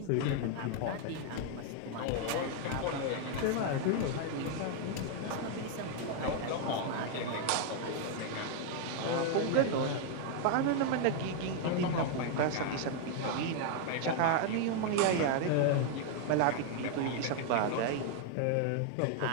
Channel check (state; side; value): different; both; correlation 0.00